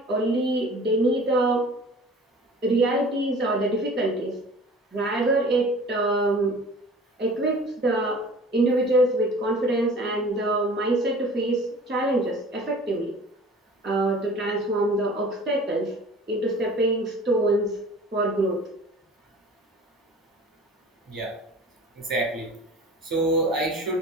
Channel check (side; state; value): both; normal; correlation 0.45